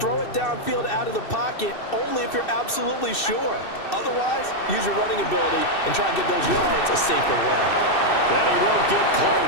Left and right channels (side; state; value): right; late; 2.6 ms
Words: it downfield out of the pocket only if you're absolutely sure. Otherwise, use your running ability and try and get those yards a safer way. And he won't get